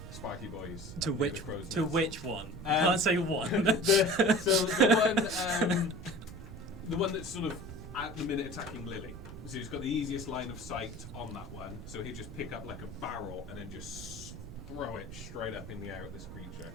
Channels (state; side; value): noise; right; rumble, 12 dB below the sound